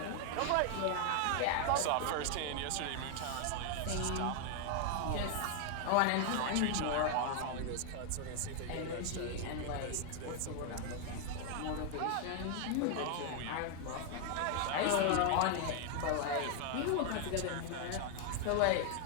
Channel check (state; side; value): different; both; correlation 0.00